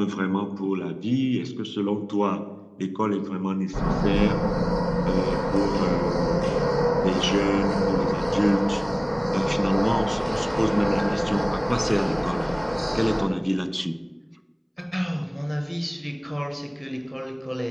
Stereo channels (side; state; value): both; identical; correlation 1.00